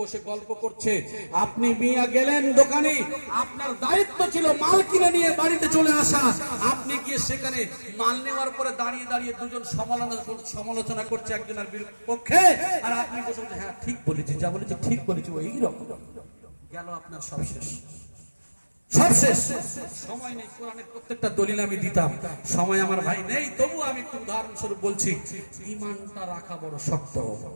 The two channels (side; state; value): both; inverted; correlation -1.00